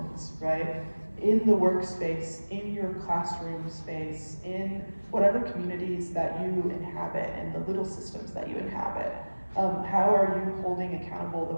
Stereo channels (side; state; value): both; inverted; correlation -1.00